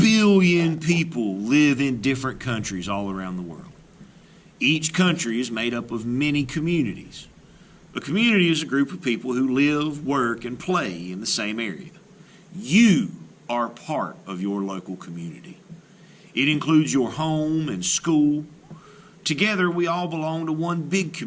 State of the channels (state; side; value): identical; both; correlation 1.00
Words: people live in different countries all around the world. Each country is made up of many communities. A community is a group of people who live, work, and play in the same area. You are part of your local community. It includes your home and school. Together, we all belong to one big